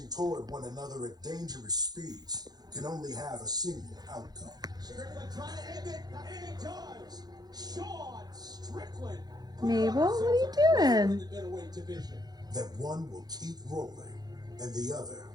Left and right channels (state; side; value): late; left; 0.19 ms